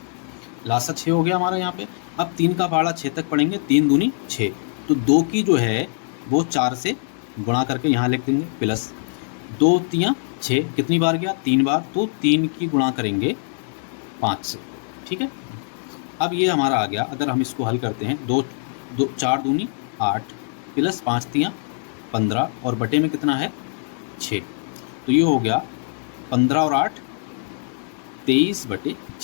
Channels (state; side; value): silent; right; 64 dB below the other